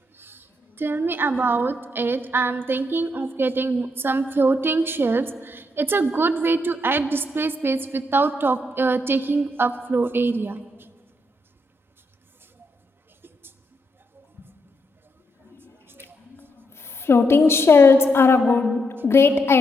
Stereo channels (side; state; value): both; normal; correlation 0.78